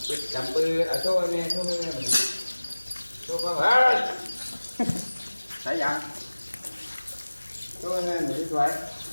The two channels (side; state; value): both; inverted; correlation -1.00